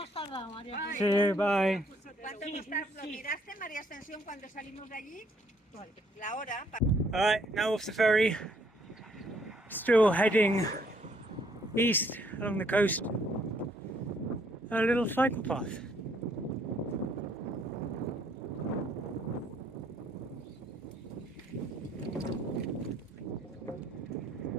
tardado, María. See you, bye. ¿Cuánto hemos tardado? ¿Miraste, María Ascensión, cuando salimos de allí? La hora. Alright, now off the ferry. Still heading east along the coast. A little cycle path.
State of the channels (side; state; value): both; normal; correlation 0.66